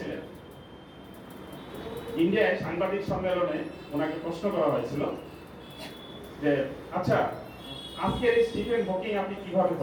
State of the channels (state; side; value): identical; both; correlation 1.00